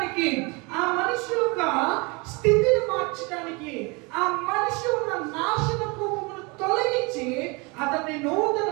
ఆ మనిషి యొక్క స్థితిని మార్చడానికి, ఆ మనిషి ఉన్న నాశనపు తొలగించి అతన్ని నూతన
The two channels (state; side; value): quieter; left; 28.3 dB